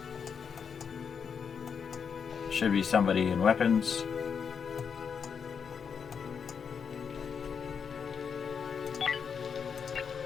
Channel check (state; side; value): quieter; right; 6.6 dB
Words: Should be somebody in weapons.